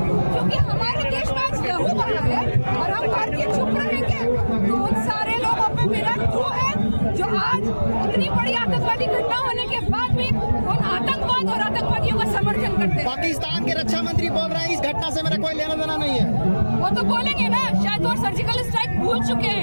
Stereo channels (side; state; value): both; inverted; correlation -1.00